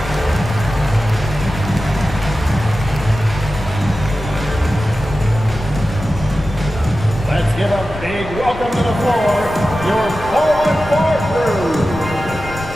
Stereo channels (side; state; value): left; noise; rumble, 13 dB below the sound